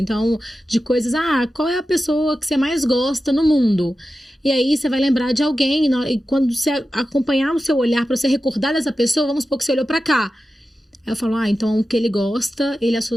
de coisas, qual é a pessoa que você mais gosta no mundo? E aí você vai lembrar de alguém, e quando você acompanhar o seu olhar, para você recordar dessa pessoa, vamos supor que você olhou para cá. Aí eu falo, então o que ele gosta, ele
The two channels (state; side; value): normal; both; correlation 0.93